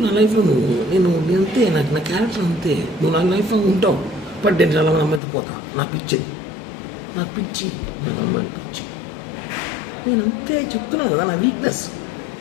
నా లైఫ్లో నేను అంతే. నాకు నా క్యారెక్టర్ అంతే. నువ్వు నా లైఫ్లో ఉంటావు. బట్ నేను చాలా మంది అమ్మాయితో పోతా. నా పిచ్చిది, నాకు పిచ్చి, నాకు అమ్మాయిలు పిచ్చి. నేను అంతే చెప్తున్నాను కదా. నా వీక్నెస్,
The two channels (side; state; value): right; drops out; at 5.2 s